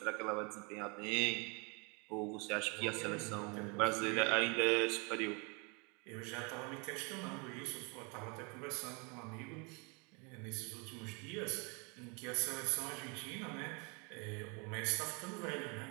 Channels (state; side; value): quieter; left; 32.1 dB